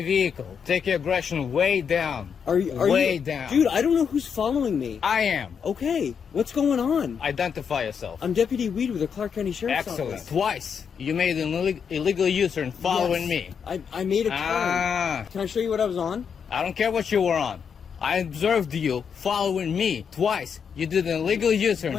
vehicle. Take your aggression way down. Are you way down? Dude, I don't know who's following me. I am. Okay, what's going on? Identify yourself. I'm Deputy Weed with the Clark County Sheriff's Excellent. Office. Twice you made an illegal U-turn following me. I made a turn. Can I show you what I was on? I don't care what you were on. I observed you following me twice. You did an illegal U-turn.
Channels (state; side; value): quieter; right; 6.9 dB